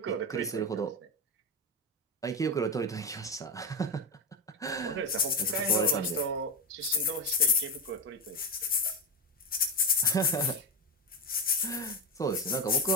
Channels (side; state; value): both; normal; correlation 0.14